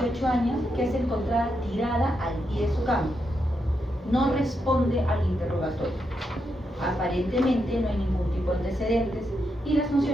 años que es encontrada tirada al pie de su cama. No responde al interrogatorio. Aparentemente no hay ningún tipo de antecedentes y las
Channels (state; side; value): normal; both; correlation 0.83